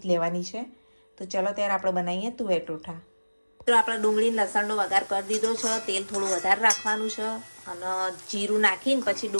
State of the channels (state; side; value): inverted; both; correlation -1.00